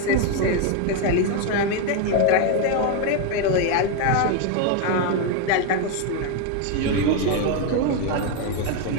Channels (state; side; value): different; both; correlation 0.01